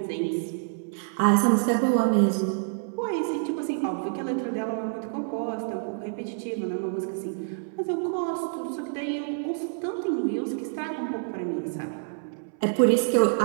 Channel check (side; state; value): left; silent; 60 dB below the other